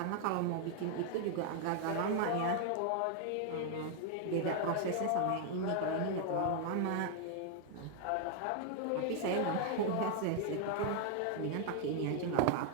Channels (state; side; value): different; both; correlation 0.00